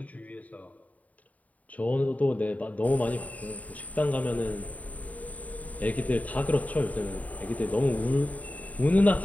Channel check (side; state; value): right; late; 0.072 ms